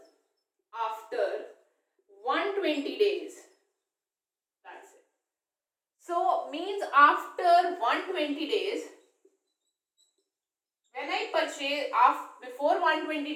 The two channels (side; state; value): both; identical; correlation 1.00